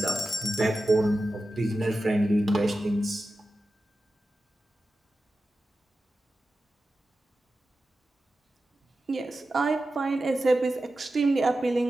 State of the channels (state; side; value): normal; both; correlation 0.93